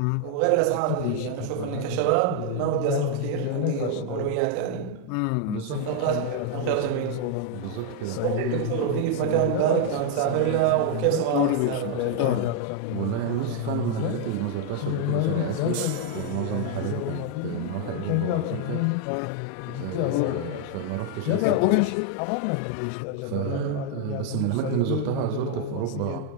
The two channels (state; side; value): different; both; correlation 0.00